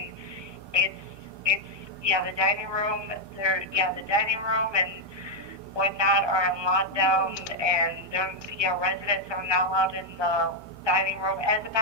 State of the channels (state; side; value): late; left; 1.2 ms